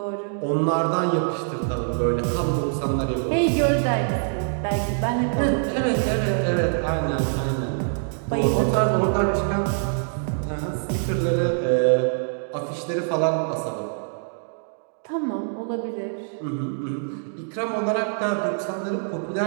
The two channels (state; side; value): silent; left; digital silence